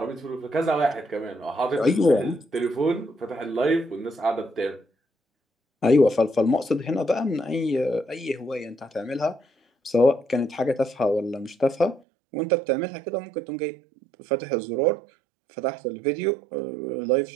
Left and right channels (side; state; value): left; drops out; at 12.0 s